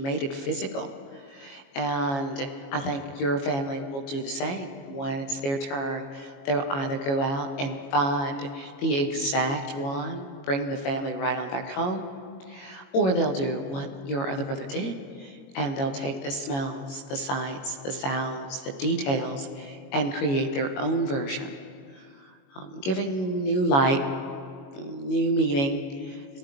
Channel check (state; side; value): late; right; 22 ms